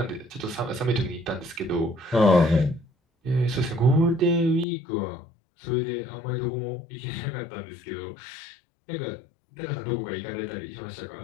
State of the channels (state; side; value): drops out; right; at 4.7 s